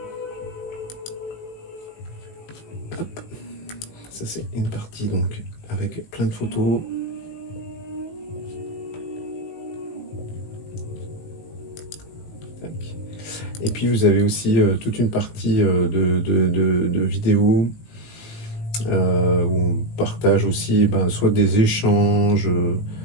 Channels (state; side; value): late; right; 19 ms